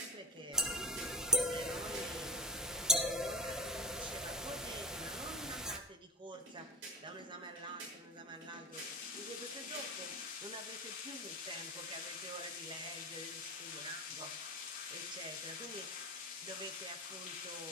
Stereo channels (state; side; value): normal; both; correlation 0.25